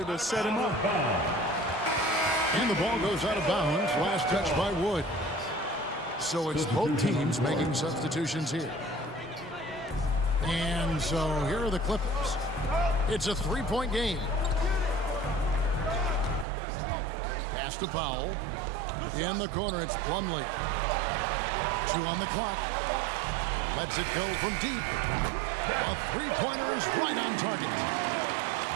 to set him up. And the ball goes out of bounds. Last touch by Wood. So it's both teams making substitutions here. And so here are the Clippers. It's a 3-point game. Pass to Powell. In the corner, it's Plumlee. 2 on the clock. Lets it go from deep. A 3-pointer is right on target.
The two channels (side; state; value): left; drops out; at 16.4 s